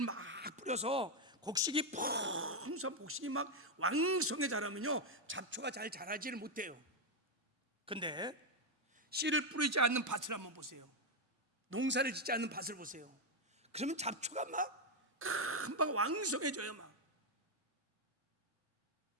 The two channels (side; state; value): left; late; 1.3 ms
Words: 막 뿌려서 곡식이 풍성, 곡식이 막 왕성해 자라면요 잡초가 잘 자라지를 못해요. 근데 씨를 뿌리지 않는 밭을 한번 보세요. 농사를 짓지 않는 밭을 보세요. 그러면 잡초가 막 금방 왕성해져요. 막.